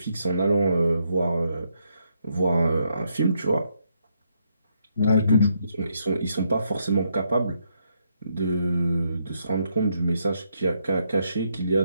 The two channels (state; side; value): inverted; both; correlation -0.77